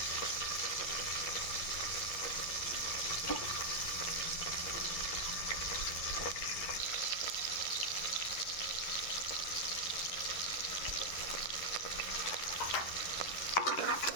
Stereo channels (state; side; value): late; right; 11 ms